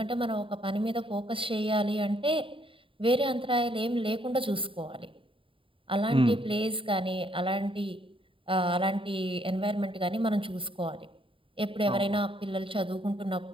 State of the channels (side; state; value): left; late; 0.25 ms